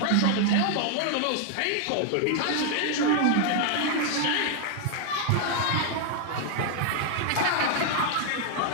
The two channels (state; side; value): different; both; correlation 0.00